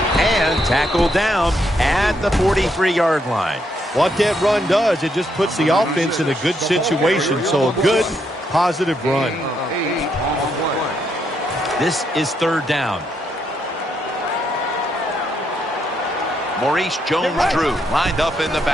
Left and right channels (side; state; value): both; normal; correlation 0.77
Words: And tackled down at the 43-yard line. What that run does, it just puts the offense in a good situation. So a good, positive run. This is 3rd down. Maurice Jones-Drew lined up in the